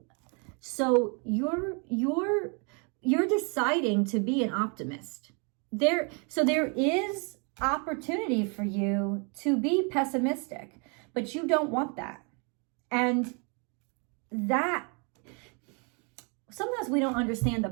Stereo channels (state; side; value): quieter; left; 35.1 dB